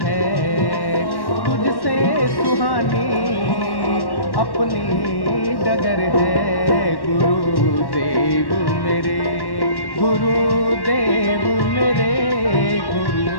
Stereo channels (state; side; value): late; right; 1.1 ms